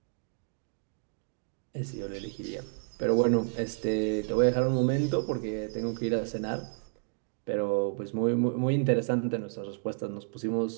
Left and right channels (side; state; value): left; silent; digital silence